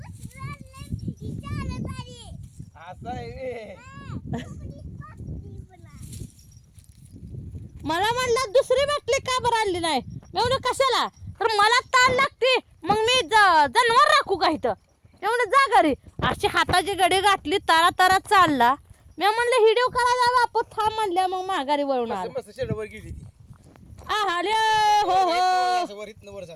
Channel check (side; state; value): both; identical; correlation 1.00